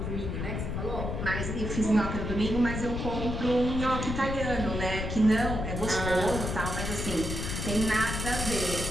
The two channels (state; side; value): noise; left; rumble, 3 dB below the sound